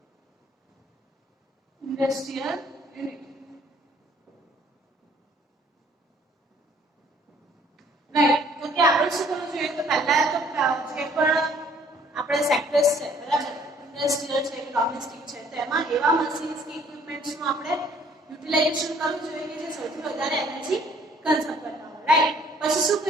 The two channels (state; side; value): normal; both; correlation 0.59